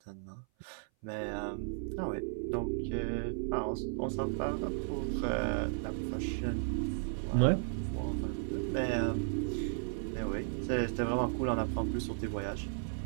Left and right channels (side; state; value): left; silent; 55 dB below the other